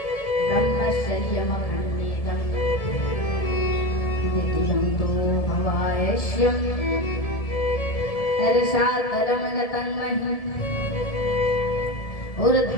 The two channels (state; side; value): late; right; 1.7 ms